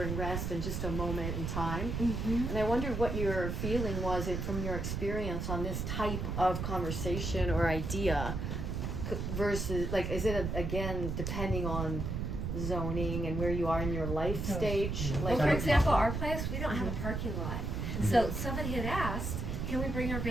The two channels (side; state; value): right; noise; rumble, 2 dB below the sound